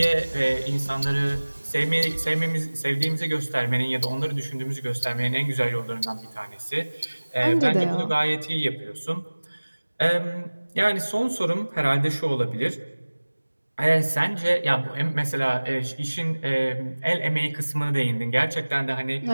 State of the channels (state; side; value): inverted; both; correlation -1.00